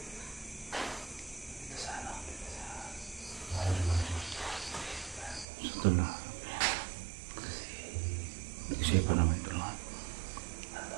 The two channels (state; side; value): drops out; left; at 5.5 s